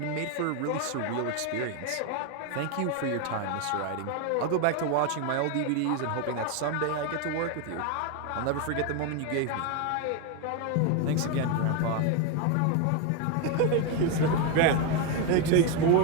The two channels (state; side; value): different; both; correlation 0.01